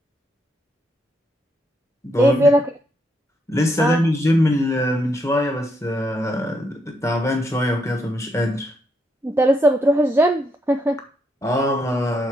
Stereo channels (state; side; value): normal; both; correlation 0.77